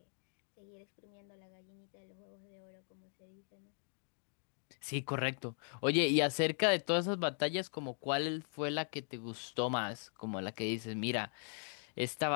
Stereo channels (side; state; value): right; silent; 52 dB below the other